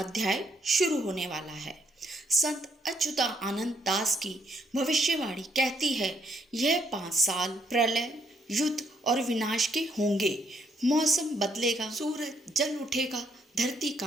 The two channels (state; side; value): normal; both; correlation 0.70